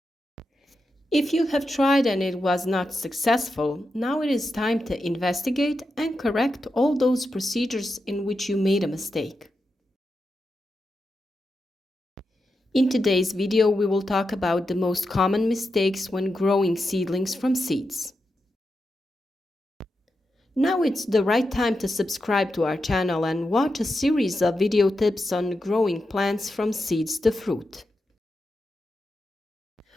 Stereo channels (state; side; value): normal; both; correlation 0.88